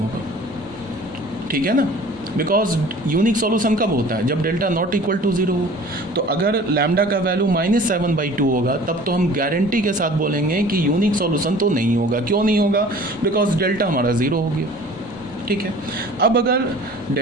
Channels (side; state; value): both; normal; correlation 0.46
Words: ठीक है ना, बिकॉज यूनिक सॉल्यूशन कब होता है, जब डेल्टा नॉट इक्वल टू 0 हो। तो अगर लैम्डा का वैल्यू -7/2 होगा तब तो हम गारंटी के साथ बोलेंगे कि यूनिक सॉल्यूशन तो नहीं होगा। क्यों नहीं होगा, बिकॉज डेल्टा हमारा 0 हो गया, ठीक है। अब अगर